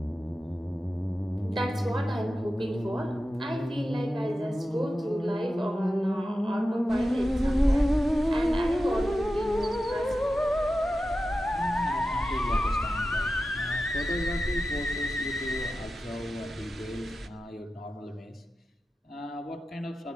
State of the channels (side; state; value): both; normal; correlation 0.92